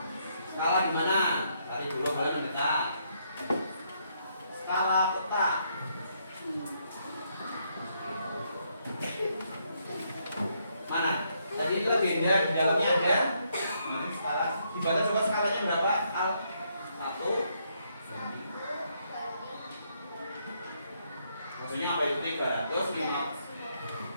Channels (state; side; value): inverted; both; correlation -0.74